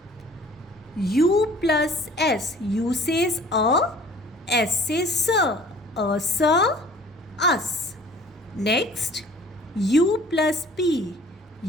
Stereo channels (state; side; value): normal; both; correlation 0.51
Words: U plus S. U says A. S says sir. A sir. Us. Next, U plus P.